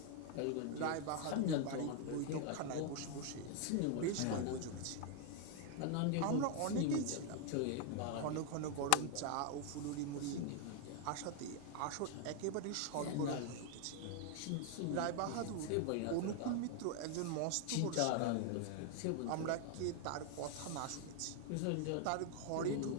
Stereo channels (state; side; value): different; both; correlation 0.00